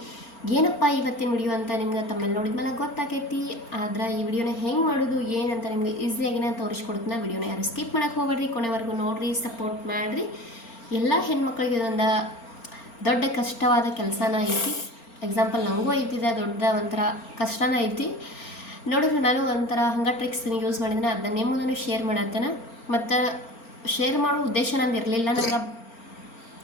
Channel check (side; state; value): right; late; 4.4 ms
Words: ಏನಪ್ಪ ಇವತ್ತಿನ ವಿಡಿಯೋ ಅಂತ ನಿಮ್ಗೆ ತಮ್ಮೆಲ್ಲ ನೋಡಿದ್ಮೇಲೆ ಗೊತ್ತಾಗೈತಿ. ಆದ್ರೆ ಈ ವಿಡಿಯೋನ ಹೆಂಗೆ ಮಾಡೋದು ಏನಂತ ನಿಮಗೆ ಈಸಿಯಾಗಿ ನಾನು ತೋರಿಸ್ಕೊಡ್ತೀನಿ. ವಿಡಿಯೋನ ಯಾರು ಸ್ಕಿಪ್ ಮಾಡೋಕ್ಕೆ ಹೋಗ್ಬೇಡ್ರಿ, ಕೊನೆವರೆಗೂ ನೋಡಿರಿ, ಸಪೋರ್ಟ್ ಮಾಡಿರಿ. ಎಲ್ಲ ಹೆಣ್ಮಕ್ಳಿಗೆ ಇದೊಂದು ದೊಡ್ಡ ಕಷ್ಟವಾದ ಕೆಲಸನ ಐತಿ. ಎಕ್ಸಾಂಪಲ್ ನನಗೂ ಐತಿದೆ, ದೊಡ್ಡ ಒಂಥರ ಕಷ್ಟನ ಐತಿ. ನೋಡಿದ್ರೆ ನಾನು ಒಂಥರ ಹಂಗೆ ಟ್ರಿಕ್ಸ್ ಯೂಸ್ ಮಾಡಿದ್ರೆ ಅದನ್ನ ನಿಮ್ಮ ಮುಂದೆ ಶೇರ್ ಮಾಡತ್ತೇನೆ. ಮತ್ತು ಶೇರ್ ಮಾಡೋ ಉದ್ದೇಶ ನಂಗೆ ಇರಲಿಲ್ಲ,